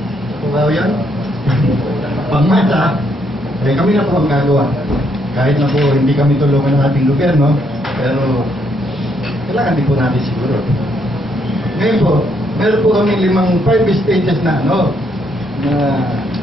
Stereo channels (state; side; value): normal; both; correlation 0.73